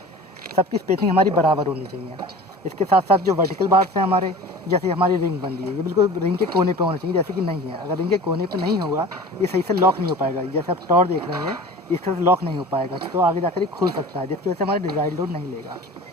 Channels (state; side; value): normal; both; correlation 0.39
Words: सबकी स्पेसिंग हमारी बराबर होनी चाहिए। इसके साथ साथ जो वर्टिकल बार्स हैं हमारे, जैसे हमारी रिंग बन रही है ये बिल्कुल रिंग के कोने पे होना चाहिए, जैसे कि नहीं है। अगर रिंग के कोने पे नहीं होगा ये सही से लॉक नहीं हो पाएगा। जैसे आप टॉर देख रहे हैं इससे लॉक नहीं हो पाएगा, तो आगे जाकर ये खुल सकता है, जिसकी वजह से हमारा डिज़ाइन लोड नहीं लेगा।